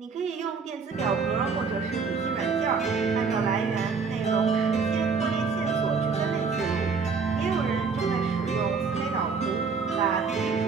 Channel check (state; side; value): quieter; left; 5.1 dB